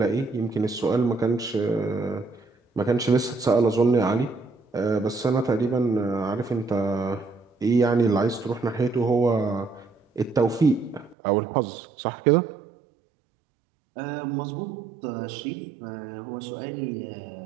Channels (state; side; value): drops out; left; at 11.2 s